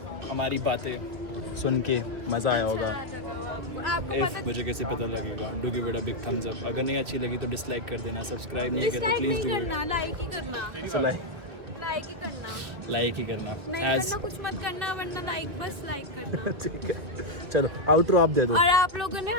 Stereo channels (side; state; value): left; late; 2.3 ms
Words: हमारी बातें सुन के मज़ा आया होगा। आपको इफ पता, मुझे कैसे पता लगेगा? Do give it a big thumbs up. अगर नहीं अच्छी लगी तो डिसलाइक कर देना, सब्सक्राइब नहीं किया तो डिसलाइक प्लीज़ नहीं डू करना, लाइक ही करना, इट। लाइक ही करना, लाइक ही करना नहीं एज करना कुछ मत करना, वरना लाइक, बस लाइक करना। ठीक है, चलो आउटरो आप दे दो। और आप